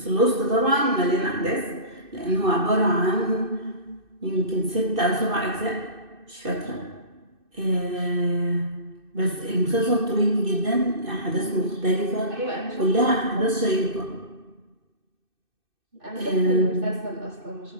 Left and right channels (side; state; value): left; late; 2.6 ms